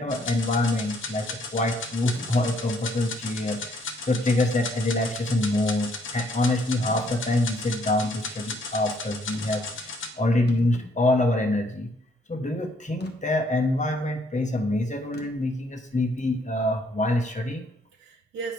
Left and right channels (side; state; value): both; normal; correlation 0.67